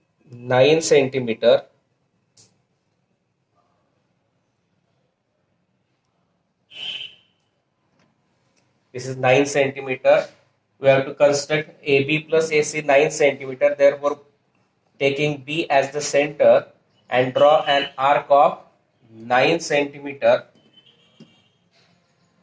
9 centimeter. This is 9 centimeter. We have to construct AB plus AC 9 centimeter. Therefore, taking B as the center and draw an arc of 9 centimeter.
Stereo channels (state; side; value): identical; both; correlation 1.00